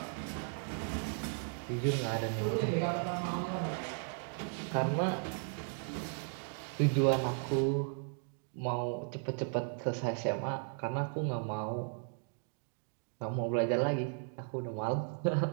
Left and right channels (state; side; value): silent; left; 54 dB below the other